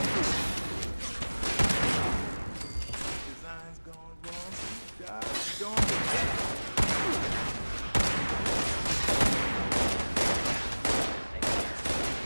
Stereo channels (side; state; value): both; inverted; correlation -1.00